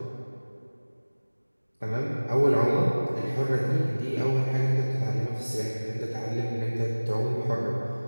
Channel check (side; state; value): both; inverted; correlation -1.00